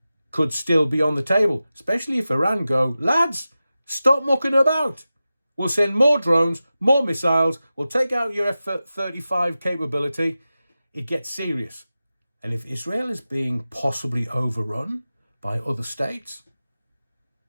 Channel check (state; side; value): inverted; both; correlation -0.94